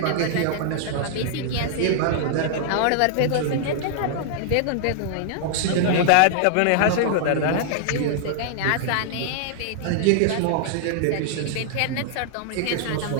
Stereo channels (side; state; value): both; different; correlation -0.01